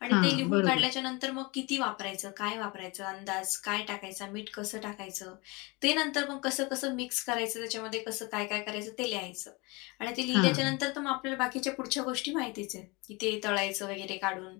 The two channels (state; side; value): quieter; right; 26.4 dB